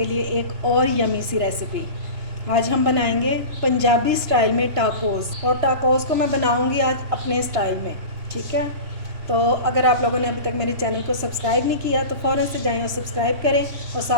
लिए एक और यमी सी रेसिपी। आज हम बनाएंगे पंजाबी स्टाइल में टाकोस, और टाकोस को मैं बनाऊंगी आज अपने स्टाइल में। ठीक है, तो अगर आप लोगों ने अभी तक मेरे चैनल को सब्सक्राइब नहीं किया तो फ़ौरन से जाएं और सब्सक्राइब करें और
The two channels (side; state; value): left; late; 3.0 ms